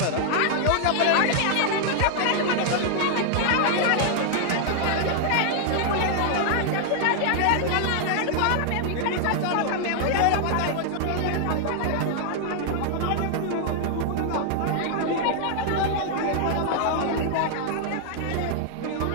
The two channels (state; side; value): different; both; correlation 0.00